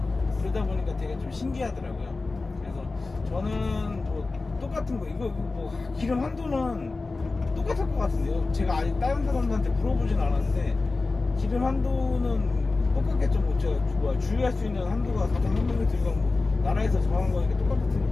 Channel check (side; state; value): right; quieter; 3.6 dB